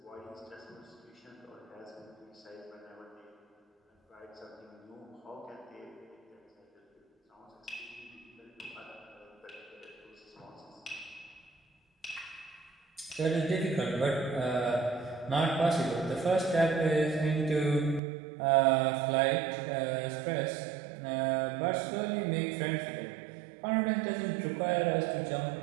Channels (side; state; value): left; drops out; at 18.0 s